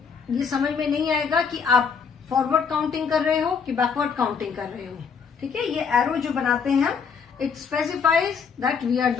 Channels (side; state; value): right; quieter; 6.1 dB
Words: ये समझ में नहीं आएगा कि आप फॉरवर्ड काउंटिंग कर रहे हो कि बैकवर्ड काउंटिंग कर रहे हो. ठीक है, ये एरो जो बनाते हैं हम, it specifies that we are